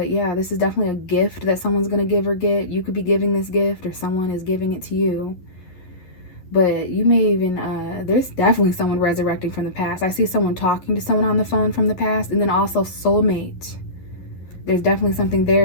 yeah, this is definitely a gift that someone's going to give or get. You could be giving this gift, or someone is giving it to you. But you may even, there's definitely someone resurrecting from the past. I see someone talking to someone on the phone from the past. And then also soulmate. There's definitely something there.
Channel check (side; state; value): right; late; 11 ms